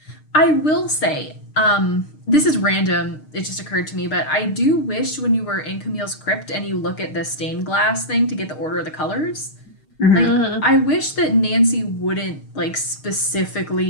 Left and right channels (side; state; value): right; late; 6.5 ms